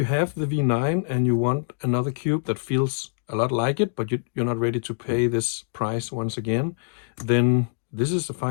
have the V9 and you want another cube that feels a lot like it, but you're not ready to pay this price once again, then this is a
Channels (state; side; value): silent; right; digital silence